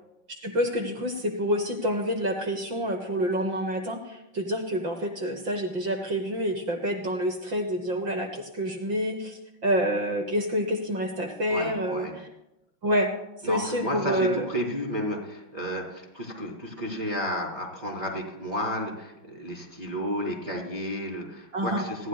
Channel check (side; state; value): left; late; 5.8 ms